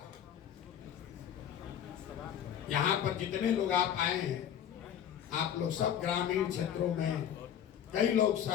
यहाँ पर जितने लोग आप आए हैं, आप लोग सब ग्रामीण क्षेत्रों में, कई लोग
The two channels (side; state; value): right; quieter; 9.6 dB